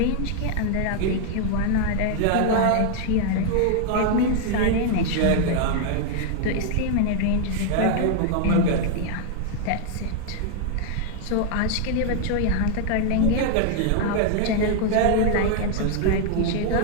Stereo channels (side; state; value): both; different; correlation 0.00